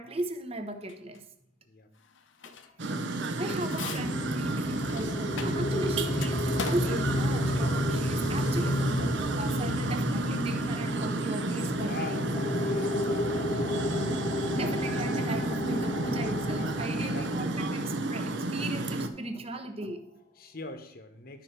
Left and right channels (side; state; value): both; normal; correlation 0.62